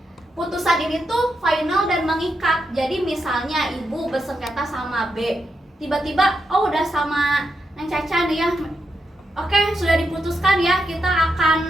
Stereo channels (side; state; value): both; normal; correlation 0.84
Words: putusan ini tuh final dan mengikat. Jadi misalnya ibu bersengketa sama B, tiba-tiba udah sama Neng Caca nih ya, oke sudah diputuskan ya, kita akan